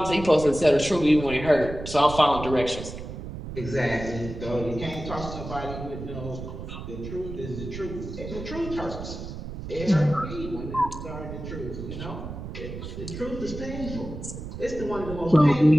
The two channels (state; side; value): noise; right; rumble, 9 dB below the sound